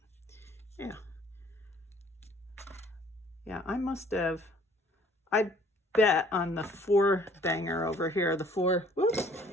yeah. Yeah, I must have, I bet on the 4 banger over here, the 4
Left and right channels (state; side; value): normal; both; correlation 0.56